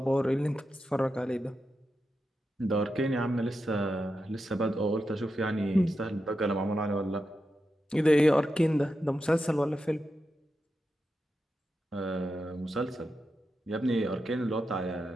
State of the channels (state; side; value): normal; both; correlation 0.88